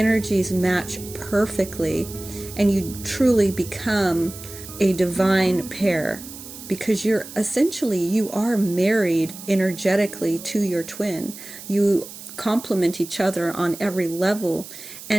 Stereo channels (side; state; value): right; noise; hiss, 14 dB below the sound